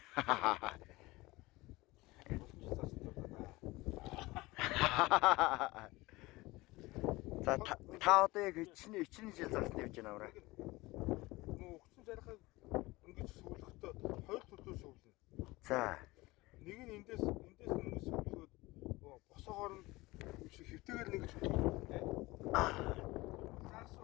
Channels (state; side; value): quieter; right; 20.9 dB